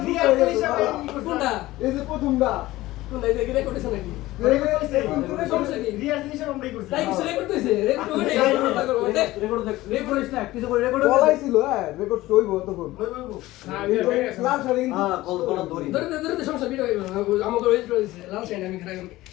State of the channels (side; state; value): right; quieter; 17.5 dB